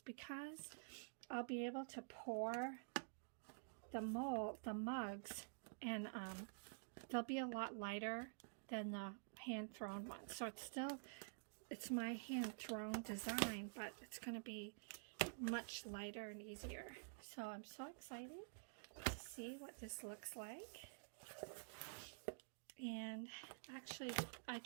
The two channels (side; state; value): left; silent; digital silence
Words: because I'll be able to pour the mugs, and they'll be a lot lighter than the hand-thrown ones. So it's my hand-thrown design, but it's going to be much lighter and easier. So I'm so excited to see what this looks like. And actually, I